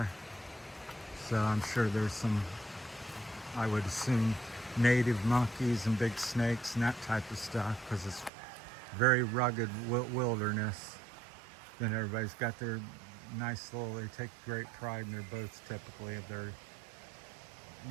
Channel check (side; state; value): left; drops out; at 8.3 s